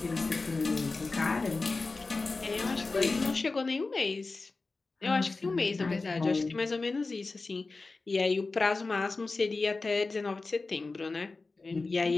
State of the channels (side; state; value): right; quieter; 3.7 dB